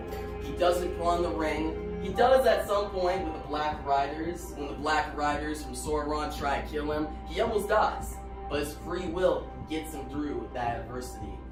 He doesn't put on the ring. He does at some point with the Black Riders. When the Black Riders from Sauron try to kill him, he almost dies. But his free will gets him through that adversity.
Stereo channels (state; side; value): identical; both; correlation 1.00